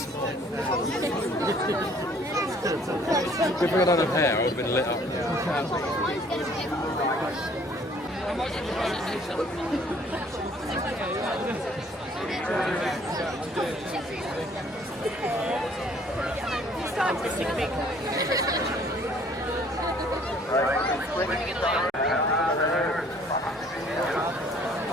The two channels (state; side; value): normal; both; correlation 0.58